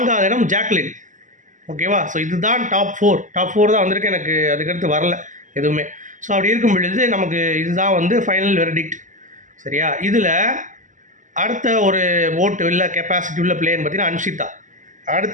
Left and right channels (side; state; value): left; late; 0.37 ms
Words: இடம் ஜாக்லின். ஓகேவா. ஸோ இதுதான் டாப் 4 தான் வந்திருக்கு. எனக்கு அதுக்கடுத்து வரல எதுவுமே. ஸோ அப்படி இருக்கும் பொழுது நமக்கு இதுதான் ஃபைனல் வெர்டிக்ட் சரியா. இதில் அடுத்த ஒரு ஓட்டு இல்லை கெப்பாசிட்டி உள்ள பிளேயர்னு பார்த்தீங்கன்னா அன்ஷிதா,